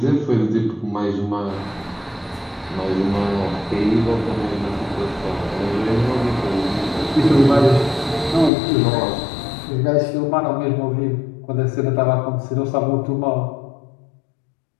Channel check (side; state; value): right; drops out; at 8.5 s